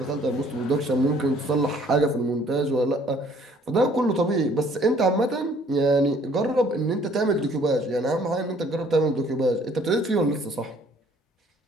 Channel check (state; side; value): normal; both; correlation 0.59